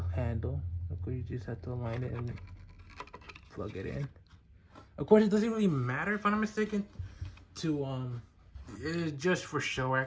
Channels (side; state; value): both; identical; correlation 1.00